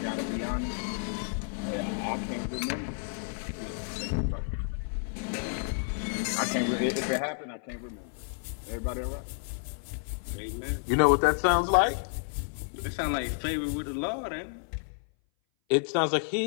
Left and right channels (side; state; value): right; silent; 57 dB below the other